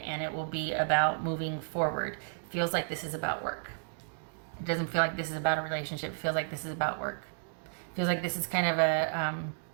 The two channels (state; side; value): silent; left; digital silence